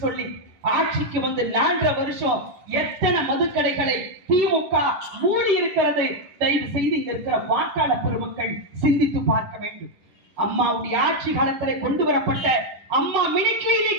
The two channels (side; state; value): left; late; 10 ms